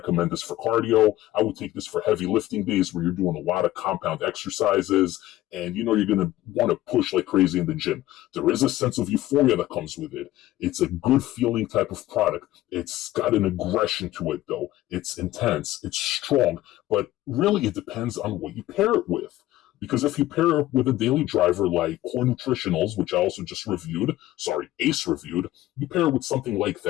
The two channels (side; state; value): right; quieter; 15.3 dB